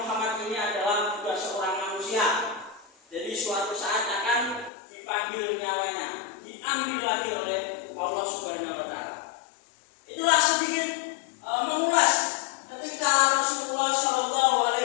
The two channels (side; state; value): right; drops out; at 4.7 s